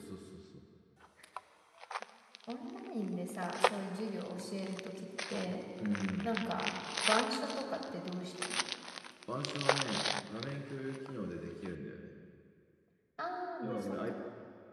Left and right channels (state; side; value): identical; both; correlation 1.00